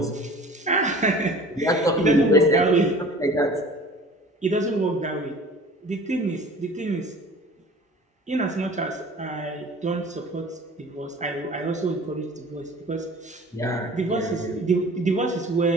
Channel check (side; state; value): both; normal; correlation 0.44